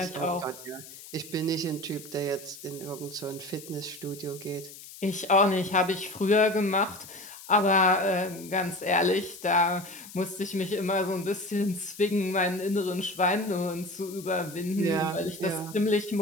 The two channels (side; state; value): left; noise; hiss, 16 dB below the sound